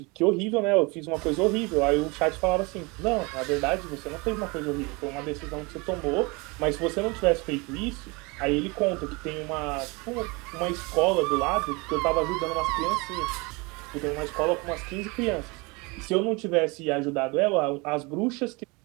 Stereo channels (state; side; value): quieter; left; 27.1 dB